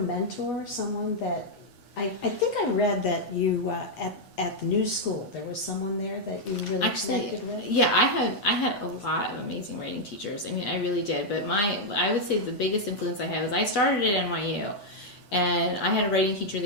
someone that, I think I read that you, at the new school, there was someone there that you really connected with? Yeah, I had a lot of amazing writing teachers. I mean, I really did. But I would say the biggest influence I had was I started at NYU, and I had a writing teacher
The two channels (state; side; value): late; right; 8.1 ms